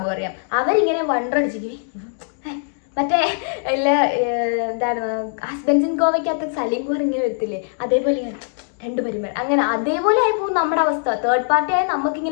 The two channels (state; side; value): silent; right; digital silence